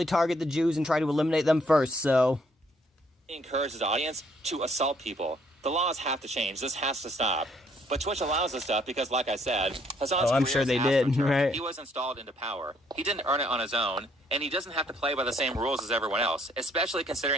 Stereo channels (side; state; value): both; normal; correlation 0.67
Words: target the Jews and try to eliminate them first, so... He encourages his audience to assault people. The laws have to change. This has to stop. But Twitch allows this stuff because, like I said, Hassan's I'm sure they did, right? He was installed into power. He didn't earn it on his own, and he doesn't have to play by the same rules as everyone else, especially